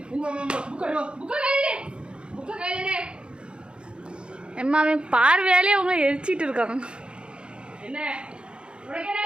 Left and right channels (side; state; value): left; late; 0.054 ms